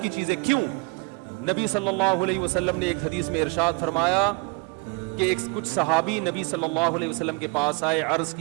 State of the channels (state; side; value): quieter; left; 30.4 dB